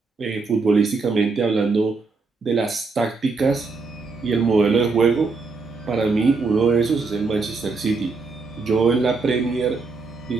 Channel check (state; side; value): quieter; left; 4.2 dB